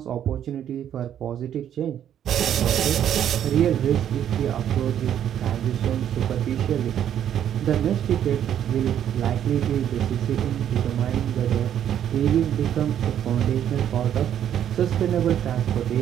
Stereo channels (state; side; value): quieter; left; 10.0 dB